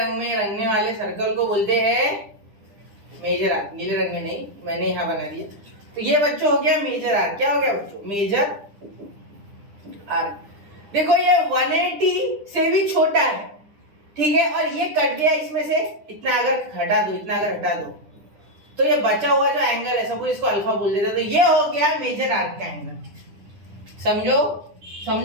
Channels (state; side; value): late; left; 9.9 ms